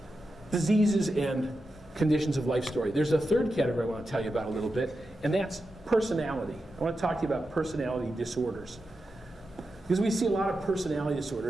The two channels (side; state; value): both; normal; correlation 0.89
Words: diseases and conditions of life story. There's a third category I want to tell you about a little bit, and that's personality. I want to talk to you about personality disorders. Because we see a lot of personality